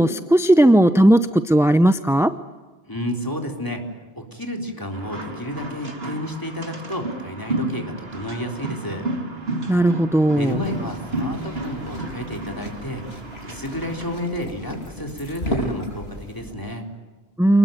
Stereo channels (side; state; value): both; normal; correlation 0.73